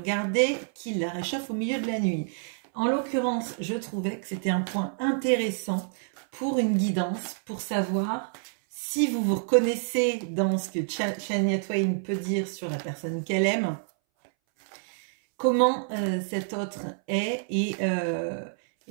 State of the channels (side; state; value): left; silent; 60 dB below the other